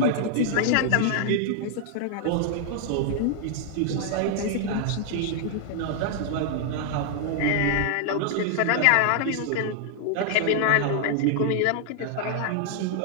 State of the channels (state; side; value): different; both; correlation 0.00